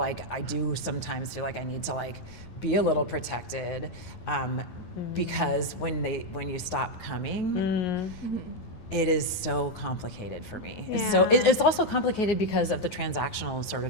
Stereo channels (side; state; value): right; late; 9.4 ms